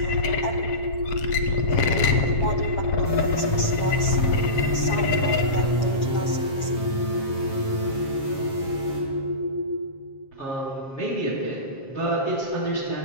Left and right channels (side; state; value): right; late; 7.4 ms